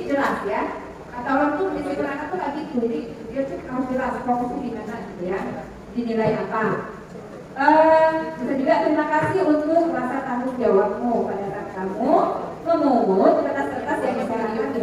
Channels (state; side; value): identical; both; correlation 1.00